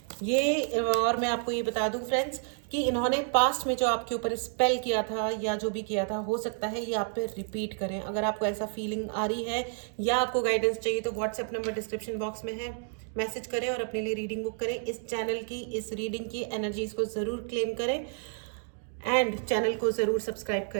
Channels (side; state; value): left; silent; 58 dB below the other